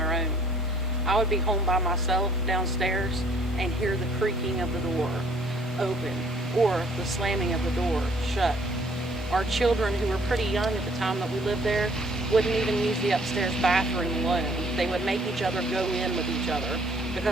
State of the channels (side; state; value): both; normal; correlation 0.60